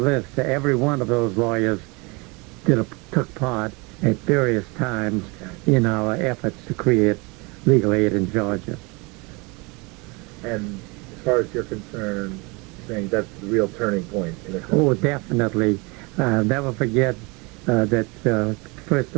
Every one of those lawyers took part at various times in our efforts to create legal aid in Georgia. And as far as you're concerned, saying that's the real turning point in the Oh, definitely. I'll never forget that, first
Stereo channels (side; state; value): left; quieter; 27.8 dB